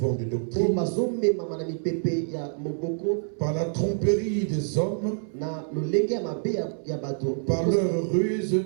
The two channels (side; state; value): left; silent; 60 dB below the other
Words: de doctrine, par la tromperie des hommes, par leur ruse